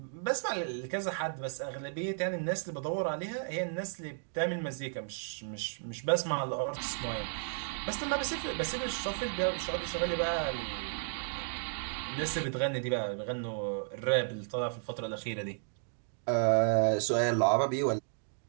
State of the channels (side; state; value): left; silent; digital silence